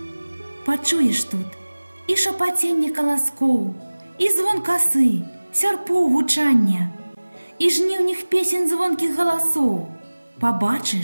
Пачуеш тут і шапаценне каласкоў, і звон касы, сярпоў гучання, і жніўных песень звонкіх галасоў.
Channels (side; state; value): both; inverted; correlation -1.00